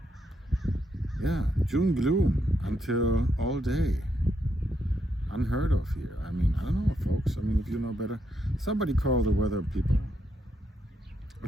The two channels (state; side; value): normal; both; correlation 0.79